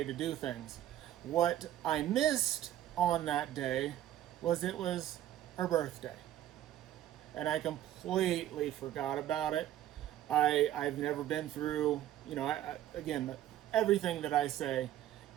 to do things. What I missed on that day was it was her birthday. And I completely forgot about it. I've never been through, again, everything that I say,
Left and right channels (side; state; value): left; quieter; 12.5 dB